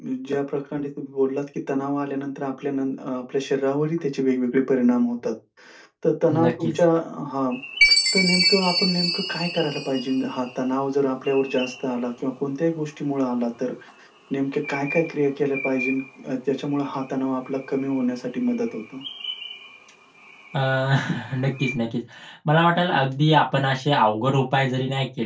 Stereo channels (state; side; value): identical; both; correlation 1.00